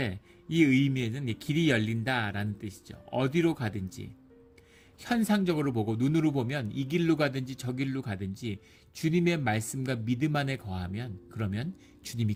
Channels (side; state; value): both; identical; correlation 1.00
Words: 이 의미에는 길이 열린다라는 뜻이죠. 어디로 가든지 현상적으로 보고 눈으로 보면 이 길로 가든지 저 길로 가든지 주님의 말씀과 믿음 안에 거하면 그러면 주님이